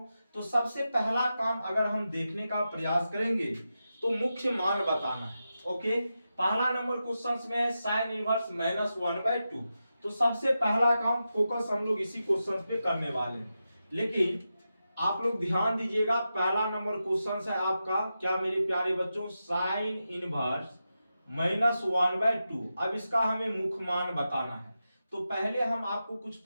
तो सबसे पहला काम अगर हम देखने का प्रयास करेंगे तो मुख्य मान बताना है। ओके, पहला नंबर क्वेश्चन में है साइन इनवर्स -1/2। तो सबसे पहला काम फोकस हम लोग इसी क्वेश्चन पे करने वाले हैं। लेकिन आप लोग ध्यान दीजिएगा, पहला नंबर क्वेश्चन है आपका क्या मेरे प्यारे बच्चों, साइन इनवर्स -1/2। अब इसका हमें मुख्य मान बताना है। तो पहले हम आपको कुछ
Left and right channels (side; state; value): both; inverted; correlation -0.90